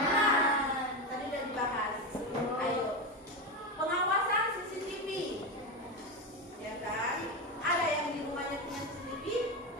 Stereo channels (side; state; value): both; normal; correlation 0.15